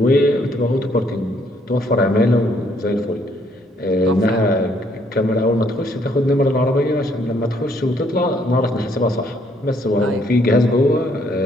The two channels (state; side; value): normal; both; correlation 0.67